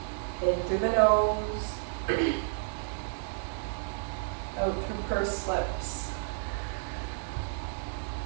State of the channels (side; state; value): left; silent; digital silence